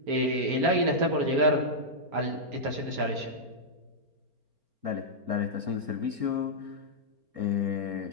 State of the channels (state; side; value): late; left; 4.4 ms